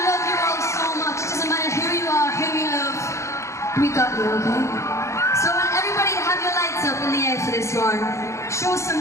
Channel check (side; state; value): right; late; 0.14 ms